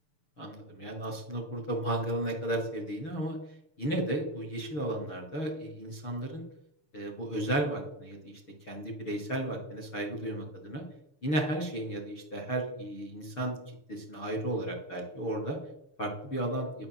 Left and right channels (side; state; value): right; late; 6.8 ms